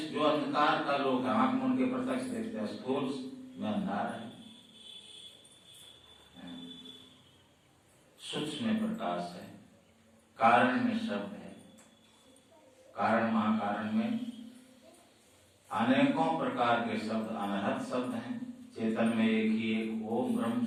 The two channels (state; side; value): identical; both; correlation 1.00